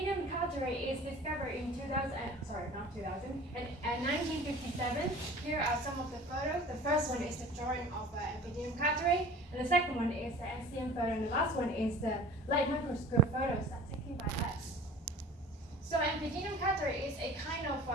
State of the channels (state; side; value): normal; both; correlation 0.43